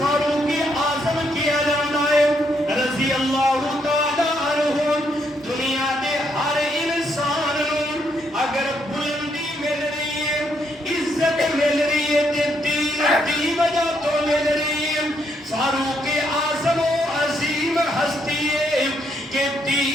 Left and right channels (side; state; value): both; normal; correlation 0.75